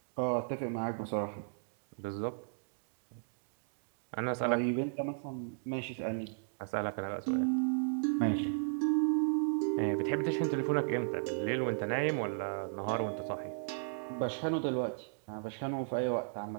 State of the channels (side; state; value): left; silent; digital silence